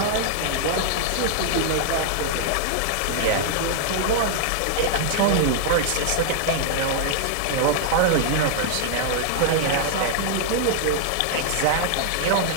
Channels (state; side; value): different; both; correlation -0.01